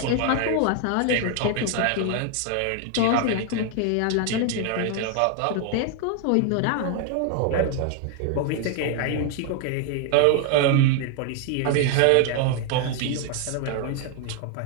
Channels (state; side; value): different; both; correlation 0.00